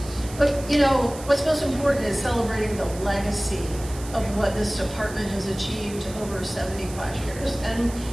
but you know, what's most important is celebrating the legacy of what this department has achieved over 75 years. And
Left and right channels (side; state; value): right; noise; hiss, 15 dB below the sound